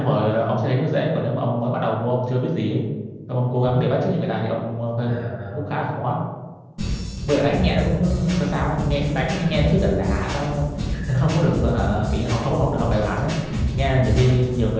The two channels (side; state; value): both; identical; correlation 1.00